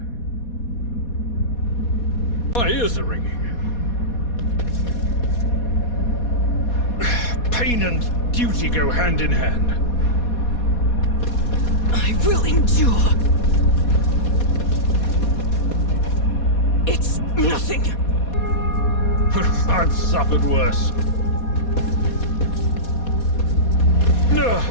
My ears are ringing. Pain and duty go hand in hand. I will endure. It's nothing. I've suffered worse.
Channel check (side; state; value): right; late; 4.2 ms